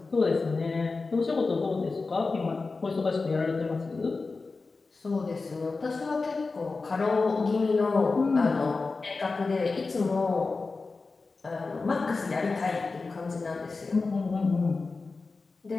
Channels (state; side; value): quieter; right; 4.0 dB